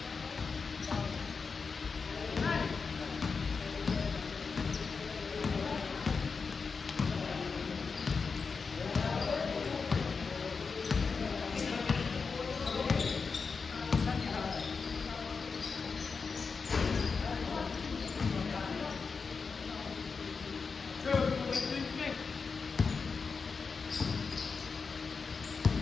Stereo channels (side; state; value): right; quieter; 5.0 dB